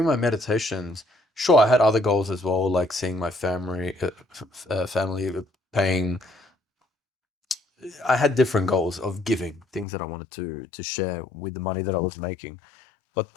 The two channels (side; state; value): right; drops out; at 9.9 s